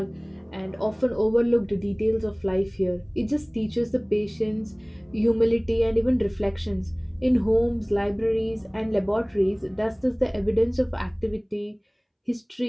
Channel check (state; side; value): identical; both; correlation 1.00